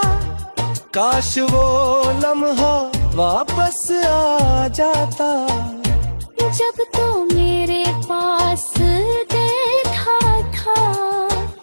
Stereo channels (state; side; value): inverted; both; correlation -1.00